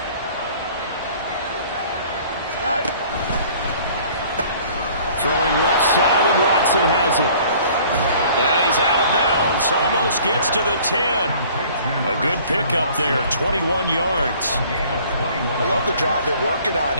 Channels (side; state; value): both; inverted; correlation -0.53